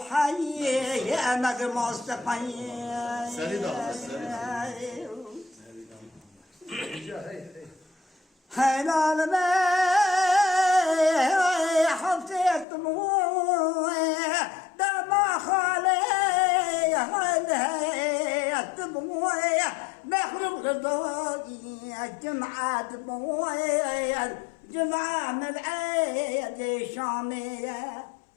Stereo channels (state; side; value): drops out; right; at 12.7 s